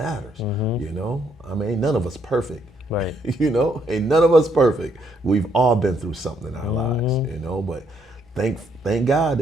I mean, ain't none of us perfect. Right. Ain't none of us perfect. We've all been through something in our lives, but thank God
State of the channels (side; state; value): both; normal; correlation 0.72